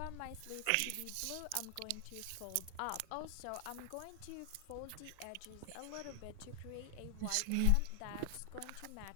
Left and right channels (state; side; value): different; both; correlation 0.00